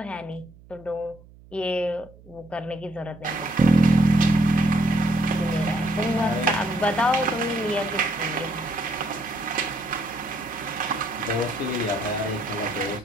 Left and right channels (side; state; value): right; noise; hum, 23 dB below the sound